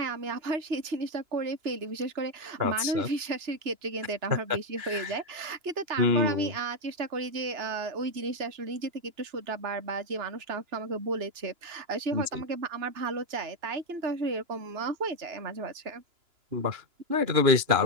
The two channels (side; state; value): left; late; 2.9 ms